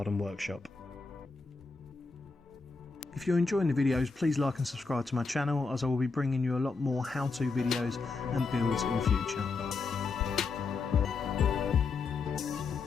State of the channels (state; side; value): quieter; right; 4.3 dB